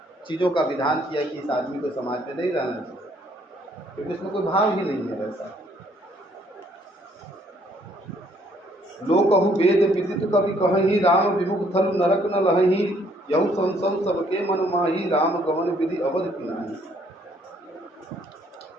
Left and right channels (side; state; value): both; normal; correlation 0.65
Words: चीज़ों का विधान किया कि इस आदमी को समाज में नहीं रहना चाहिए, क्योंकि उसमें कोई भाव ही नहीं है वैसा। लोग कहूँ वेद विदित कवि कहीं राम विमुख थल नरक न लही, यहु संसव सबके मन माही राम गमन विधि अवध पिनाही।